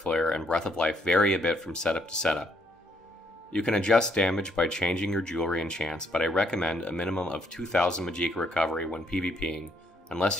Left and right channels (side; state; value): both; normal; correlation 0.71